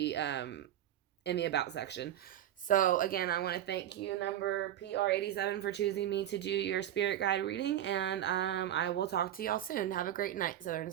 in the about section. So again, I want to thank you, number PR87, for choosing me to do your spirit guide reading, and I will talk to y'all soon. Have a great night, Southern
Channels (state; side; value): quieter; left; 11.7 dB